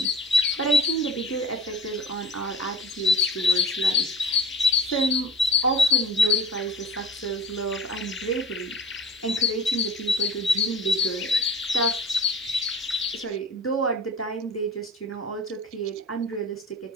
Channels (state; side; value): normal; both; correlation 0.38